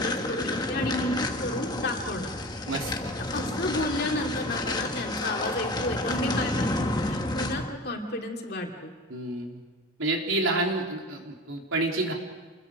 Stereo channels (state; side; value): normal; both; correlation 0.33